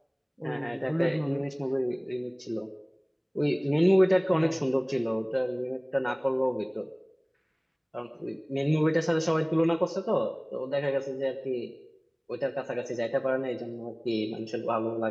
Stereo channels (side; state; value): both; identical; correlation 1.00